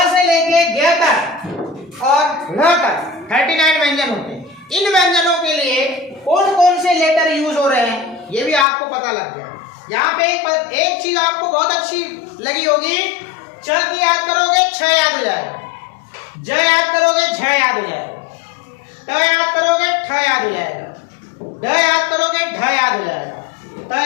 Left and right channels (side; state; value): right; drops out; at 8.7 s